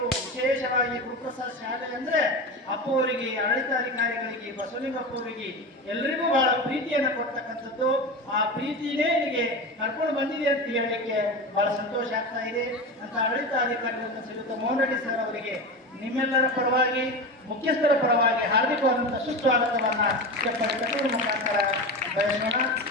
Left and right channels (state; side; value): normal; both; correlation 0.25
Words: ವಿಶೇಷವಾಗಿ ಗುರುಪ್ರಸಾದ್ ಶಾಲೆ ಅಂದರೆ ಅಪ್ಪ ಅವರಿಗೆ, ಆಡಳಿತಾಧಿಕಾರಿಗಳಿಗೆ, ಬಸವಲಿಂಗಪ್ಪ ಅವರಿಗೆ ಎಲ್ಲರಿಗೂ ಬಹಳ ಪ್ರೀತಿಯನ್ನು ಕೊಡ್ತಕ್ಕಂಥದ್ದು. ಆ ಪ್ರೀತಿನೇ ನಿಮಗೆ ಕರ್ಕೊಂಡು ಬಂದಿದೆ ಅಂತ ಹೇಳಲಿಕ್ಕೆ ಬಹಳ ಸಂತೋಷ ಆಗ್ತಾ ಇದೆ ಅಂತ ಆಡಳಿತಾಧಿಕಾರಿಗಳನ್ನು ಶ್ರೀಯುತ ಮೋಹನ್ ರೆಡ್ಡಿ ಸರ್ ಅವರಿಗೆ ನಿಮ್ಮೆಲ್ಲರ ಪರವಾಗಿ, ಮುಖ್ಯಸ್ಥರ ಪರವಾಗಿ ಹಾರ್ದಿಕವಾದಂಥ ಸುಸ್ವಾಗತವನ್ನು ತಟ್ಟುವ ಮುಖಾಂತರ ಬಯಸೋಣ.